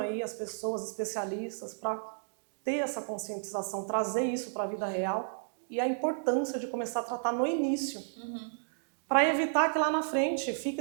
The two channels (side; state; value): left; silent; digital silence